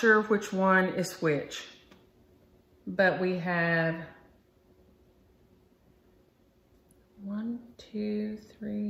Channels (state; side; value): identical; both; correlation 1.00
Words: which one is which. But we have 1, 2,